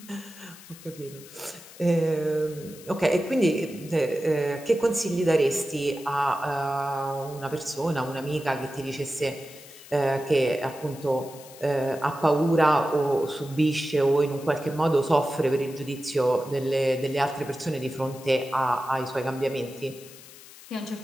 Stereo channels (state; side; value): noise; left; hiss, 19 dB below the sound